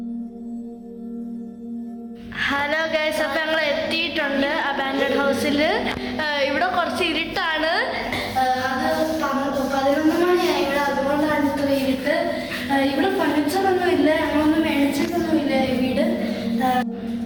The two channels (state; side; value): identical; both; correlation 1.00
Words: Hello guys, അപ്പം ഞങ്ങൾ എത്തിയിട്ടുണ്ട് അബാൻഡഡ് ഹൗസിൽ. ഇവിടെ കുറച്ച് ഇരുട്ടാണ്. അത് 11 മണിയായി ഇവിടെ, അതുകൊണ്ടാണ് ഇത്ര ഇരുട്ട്. ഇവിടെ ഫർണിച്ചറൊന്നും ഇല്ല, ഞങ്ങളൊന്നും മേടിച്ചിട്ടൊന്നുമില്ല ഈ വീട്.